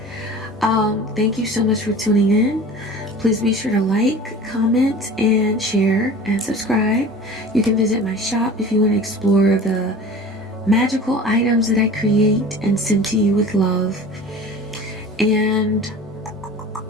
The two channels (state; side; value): normal; both; correlation 0.40